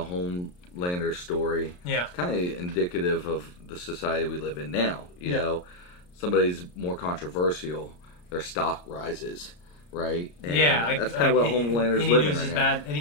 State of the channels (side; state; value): right; late; 34 ms